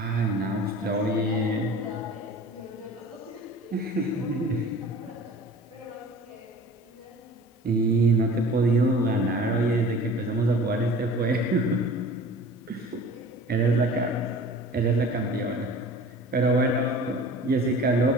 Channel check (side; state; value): both; normal; correlation 0.43